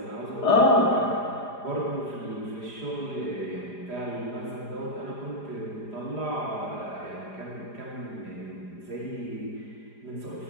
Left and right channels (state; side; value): late; right; 4.9 ms